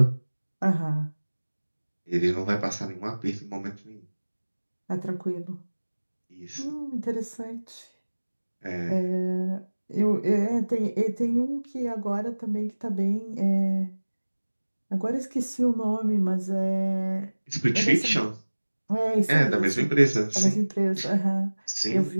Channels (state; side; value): inverted; both; correlation -1.00